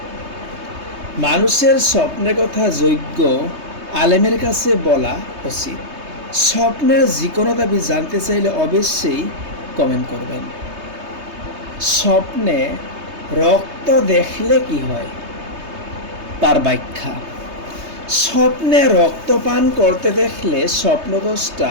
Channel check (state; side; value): late; left; 3.2 ms